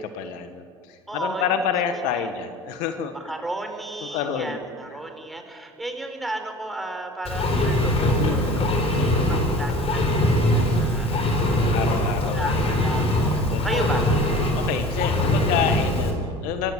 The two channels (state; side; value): normal; both; correlation 0.40